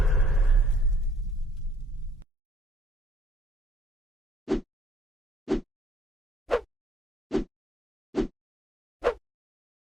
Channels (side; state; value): both; normal; correlation 0.63